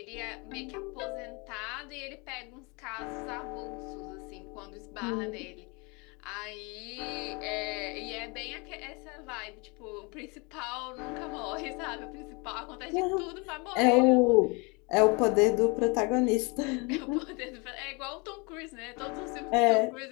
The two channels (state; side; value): quieter; right; 29.5 dB